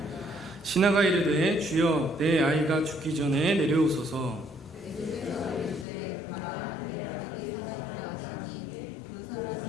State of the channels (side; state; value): right; drops out; at 5.9 s